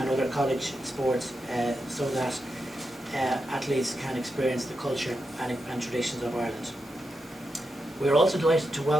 other college sports so that athletes can experience the culture and traditions of Ireland. We are also delighted to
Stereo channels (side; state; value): both; normal; correlation 0.87